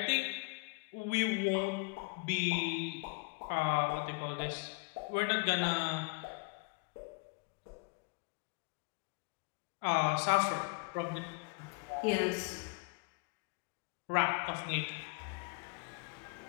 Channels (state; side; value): quieter; right; 31.9 dB